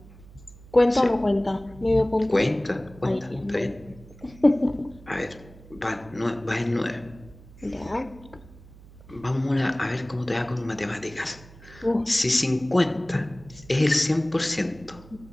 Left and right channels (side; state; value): right; noise; hum, 21 dB below the sound